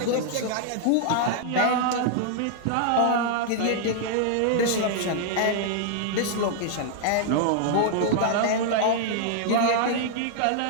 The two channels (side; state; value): both; different; correlation -0.01